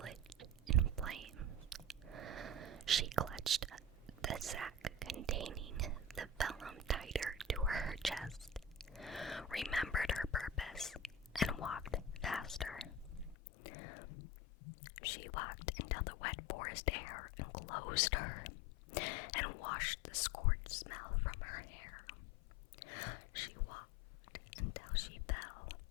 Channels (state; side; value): drops out; right; at 13.4 s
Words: in flames. She clutched the sack containing the vellum tighter to her chest, remembered her purpose, and walked faster. She walked until the wet forest air enclosed her and washed the scorched smell from her hair. She walked until she fell.